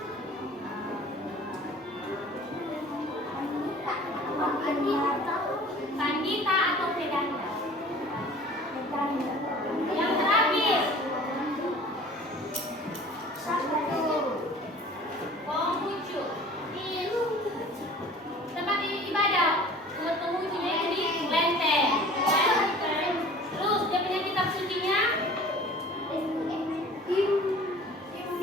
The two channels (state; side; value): normal; both; correlation 0.46